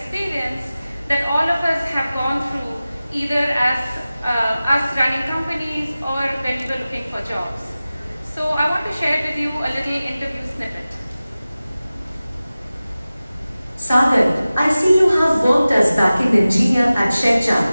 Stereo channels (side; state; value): both; inverted; correlation -0.97